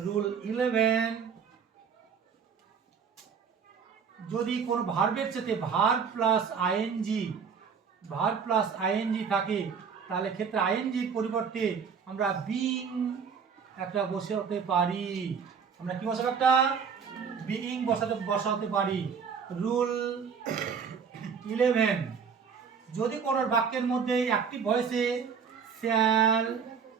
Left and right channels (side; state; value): left; quieter; 6.5 dB